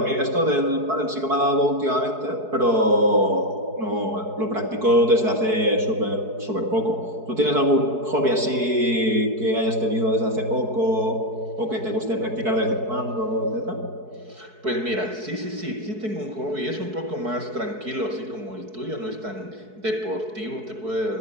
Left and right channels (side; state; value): left; late; 4.7 ms